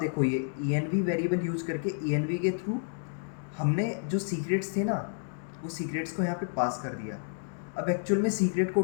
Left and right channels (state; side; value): silent; right; digital silence